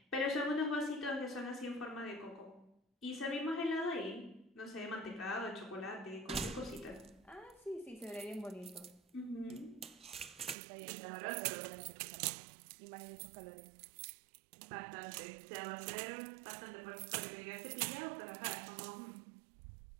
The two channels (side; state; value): left; drops out; at 10.6 s